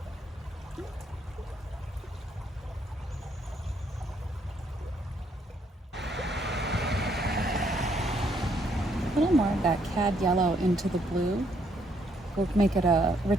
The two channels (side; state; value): both; normal; correlation 0.71